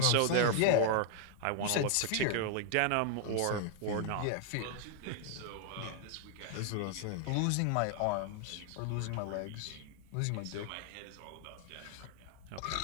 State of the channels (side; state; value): both; different; correlation 0.00